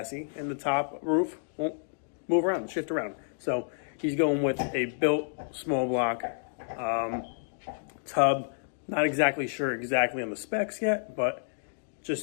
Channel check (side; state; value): right; silent; digital silence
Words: and the top roof won't move around, shift around. So he's going with a built small block tub. Not exactly sure on the specs yet, but